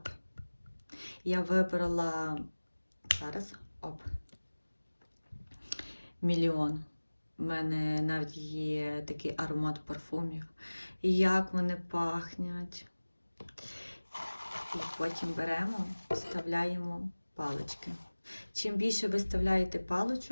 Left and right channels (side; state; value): both; inverted; correlation -1.00